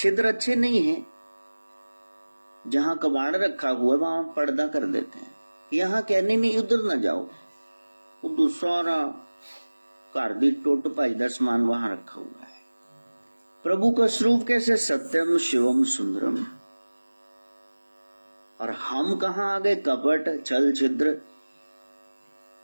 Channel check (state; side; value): inverted; both; correlation -1.00